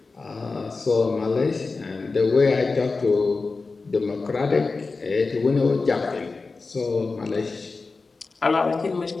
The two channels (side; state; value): right; quieter; 4.0 dB